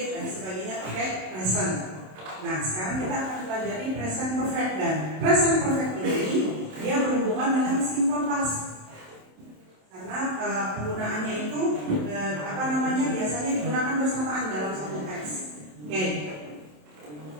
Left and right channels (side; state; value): left; late; 27 ms